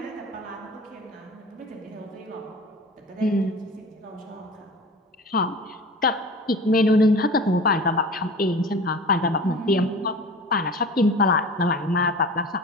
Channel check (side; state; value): both; normal; correlation 0.37